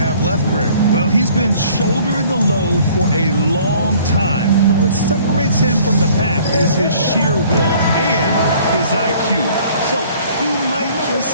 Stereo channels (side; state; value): both; inverted; correlation -0.55